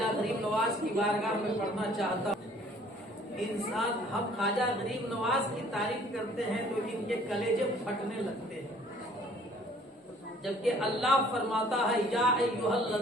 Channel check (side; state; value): both; normal; correlation 0.56